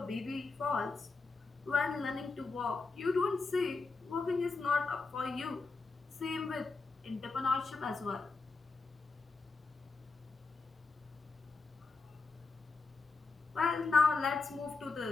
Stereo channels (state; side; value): quieter; right; 4.1 dB